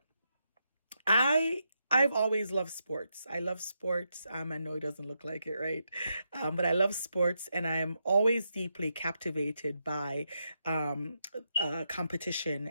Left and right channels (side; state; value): both; inverted; correlation -0.83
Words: I've always loved sports. I love sports. I know it doesn't look like it, right? But I love sports, and I am always deeply captivated by competition